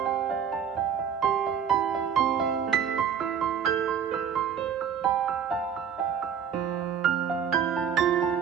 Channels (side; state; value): left; quieter; 7.9 dB